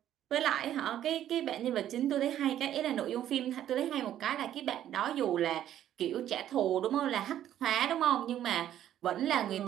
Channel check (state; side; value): quieter; left; 11.4 dB